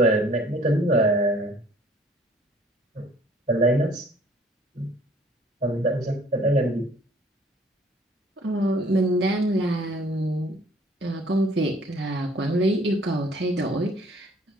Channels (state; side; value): normal; both; correlation 0.56